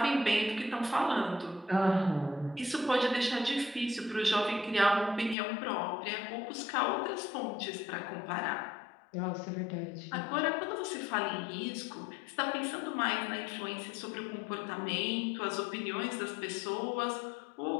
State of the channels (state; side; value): drops out; right; at 5.4 s